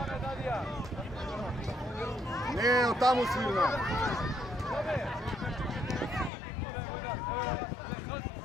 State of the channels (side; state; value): right; drops out; at 6.3 s